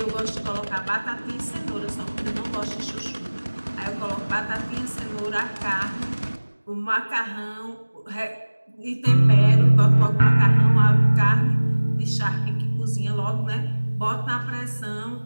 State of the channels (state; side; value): inverted; both; correlation -1.00